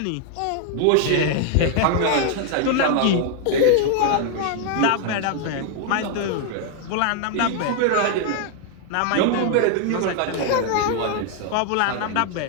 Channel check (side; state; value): both; different; correlation 0.00